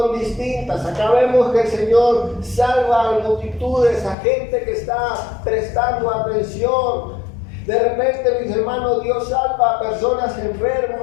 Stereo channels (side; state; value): right; drops out; at 4.2 s